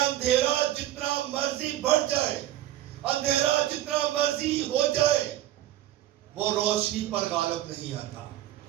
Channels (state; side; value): quieter; left; 13.6 dB